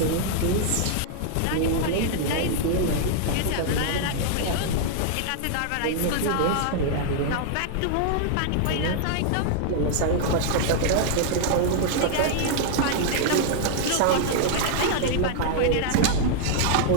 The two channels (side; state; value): both; different; correlation -0.01